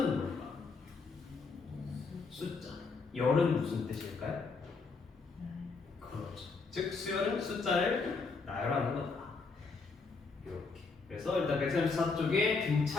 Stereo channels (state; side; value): quieter; right; 4.4 dB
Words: 뭘까? 숫자. 열은 무슨 뜻일까요? 그렇죠. 즉 수열은 숫자를 나열하는 거다. 이렇게. 그래서 일단 134쪽에